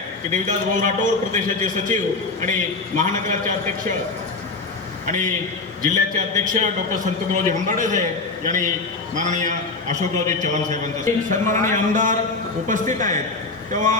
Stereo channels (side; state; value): right; quieter; 3.7 dB